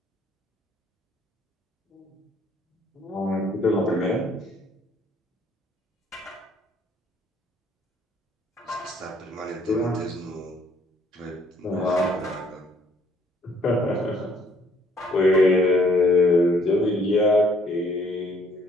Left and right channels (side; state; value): both; normal; correlation 0.63